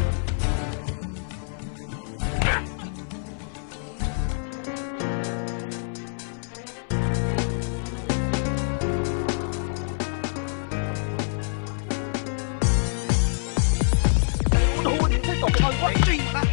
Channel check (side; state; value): right; silent; 61 dB below the other